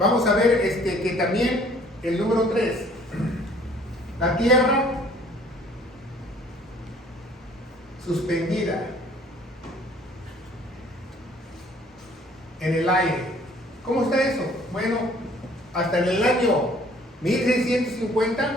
a ver que también el número 3, la Tierra suspendida en el aire. ¿Cómo está eso? Bueno, hasta en el año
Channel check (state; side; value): normal; both; correlation 0.56